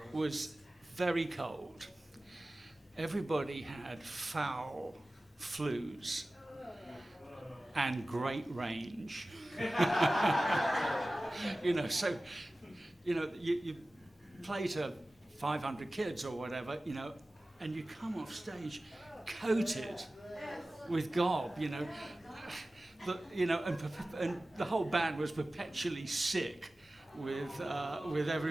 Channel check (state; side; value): normal; both; correlation 0.96